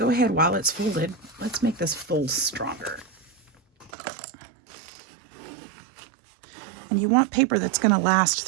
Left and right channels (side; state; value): left; drops out; at 3.9 s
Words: ahead while it's folded. Let's make this fold stronger. And you want paper that's going to last